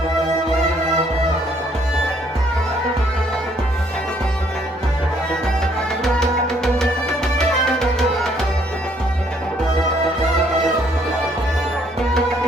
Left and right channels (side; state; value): both; normal; correlation 0.66